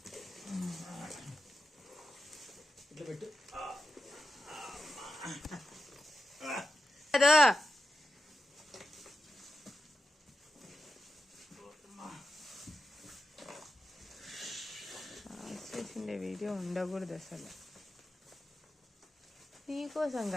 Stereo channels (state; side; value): normal; both; correlation 0.89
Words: ఇట్లా పెట్టు. చేసిండే వీడియో ఉండకూడదు అసలు. నీకోసం